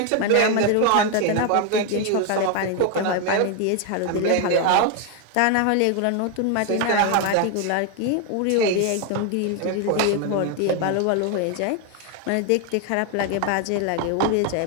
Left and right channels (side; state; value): both; different; correlation 0.01